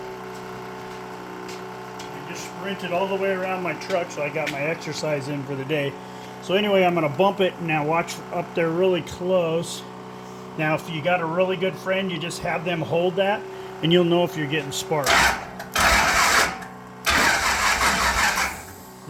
just sprinted all the way around my truck, so I got my exercise in for the day. So anyway, I'm going to bump it. Now watch up there really close. Now, if you got a really good friend, you just have them hold that, and you'll know if you're getting spark.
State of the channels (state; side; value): identical; both; correlation 1.00